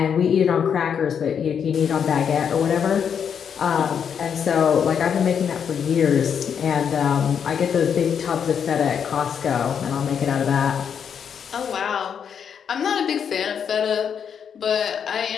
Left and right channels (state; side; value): quieter; right; 7.6 dB